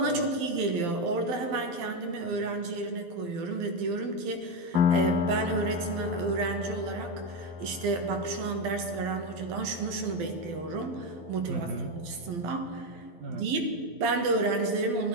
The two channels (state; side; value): late; left; 12 ms